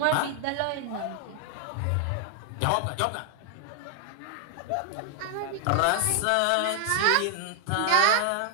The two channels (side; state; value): both; different; correlation 0.00